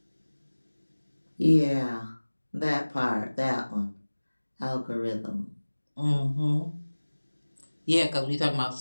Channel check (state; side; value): inverted; both; correlation -1.00